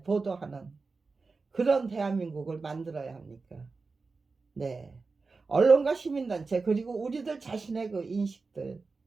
보도하는 그런 대한민국을 만들어야 합니까? 네. 언론과 시민단체 그리고 우리들 자신의 그 인식들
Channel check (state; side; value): quieter; left; 4.2 dB